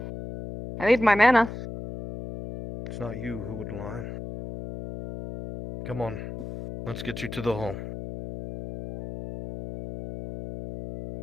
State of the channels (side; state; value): left; noise; hum, 9 dB below the sound